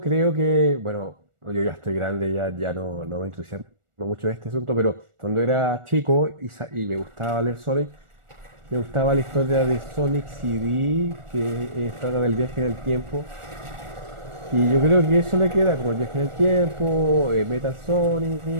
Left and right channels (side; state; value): left; late; 1.4 ms